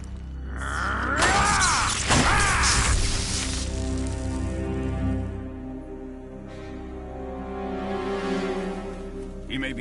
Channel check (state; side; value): identical; both; correlation 1.00